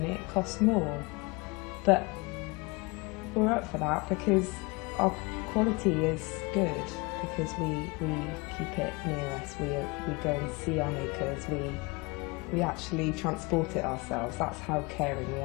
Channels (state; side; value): quieter; right; 26.5 dB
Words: it costs more. But we're up for that because our quality is good, because we keep it near us. We go and see our makers. We actually transport it ourselves. That's how caring we